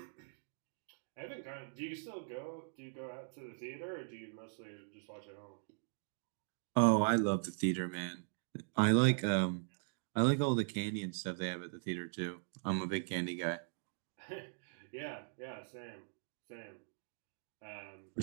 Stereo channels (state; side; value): silent; left; digital silence